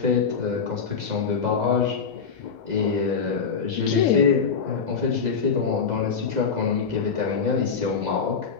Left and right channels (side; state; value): right; quieter; 5.9 dB